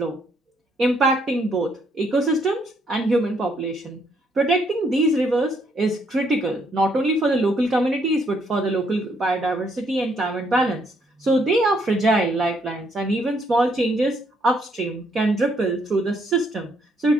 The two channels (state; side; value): normal; both; correlation 0.71